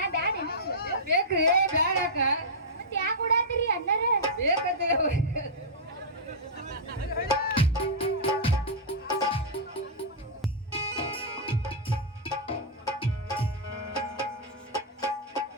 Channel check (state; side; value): normal; both; correlation -0.11